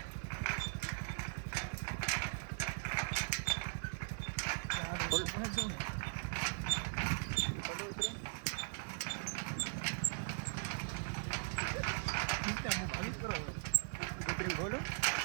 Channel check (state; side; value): silent; left; 51 dB below the other